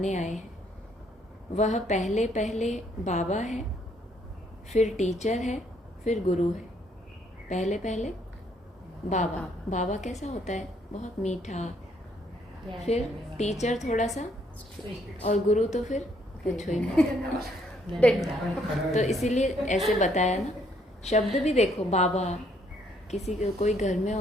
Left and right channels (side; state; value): both; normal; correlation 0.68